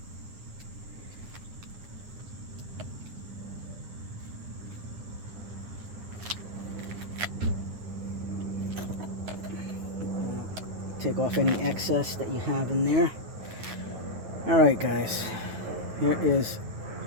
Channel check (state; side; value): late; left; 9.2 ms